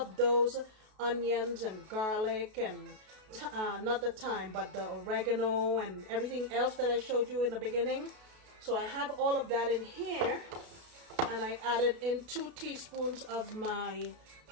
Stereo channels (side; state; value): left; late; 33 ms